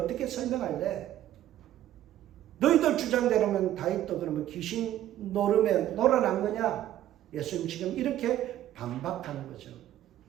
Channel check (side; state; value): left; quieter; 12.6 dB